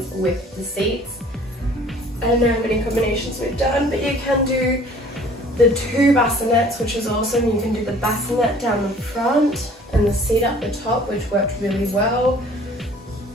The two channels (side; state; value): both; normal; correlation 0.52